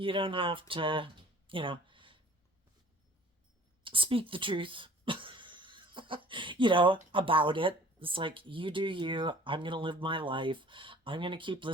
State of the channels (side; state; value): both; normal; correlation 0.49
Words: don't have to, speak the truth, about it. It's like, you do you. I'm going to live my life. I'm going to keep